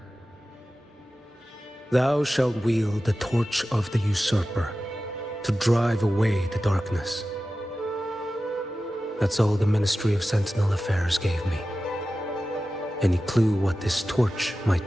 Thou shalt wield the torch of the usurper to drive away the darkness. That's all the Ministry of Sentinel Affairs gave me. Any clue what this torch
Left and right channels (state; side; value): normal; both; correlation 0.94